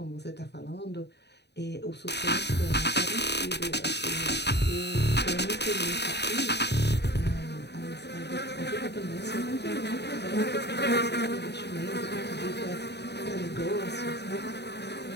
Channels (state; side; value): late; right; 0.49 ms